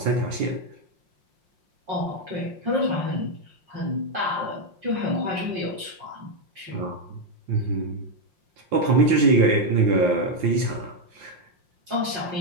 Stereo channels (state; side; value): late; left; 5.6 ms